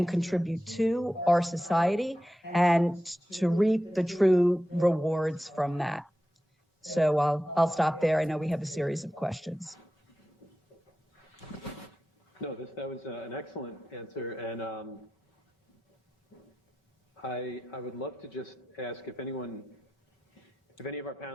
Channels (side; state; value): both; normal; correlation 0.92